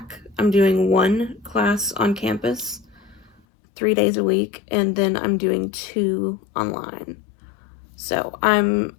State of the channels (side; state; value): right; drops out; at 3.4 s